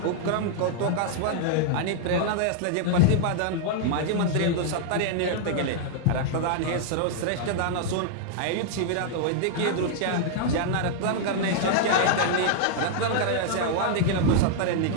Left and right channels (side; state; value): both; different; correlation -0.01